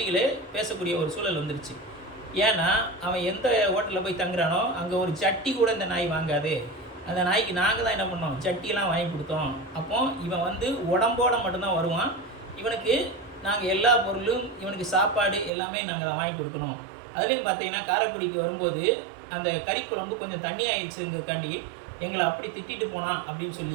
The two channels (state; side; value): drops out; left; at 15.5 s